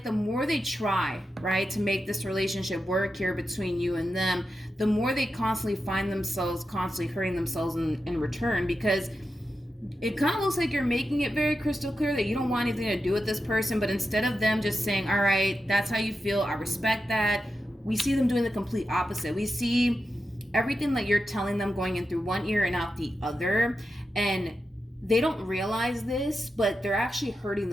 the more they try, right, to make this relationship work here between you and them, the more they constantly find themselves constantly hurting themselves in return, because it kind of looks like you're making it very crystal clear that you don't want anything to do with this person, but instead of them just saying, all right, that's how you feel, I respect that, we see them doing the complete opposite. We see everything that you're telling them going in through one ear and out the other, and they don't realize this, but they're actually hurting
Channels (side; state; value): both; normal; correlation 0.89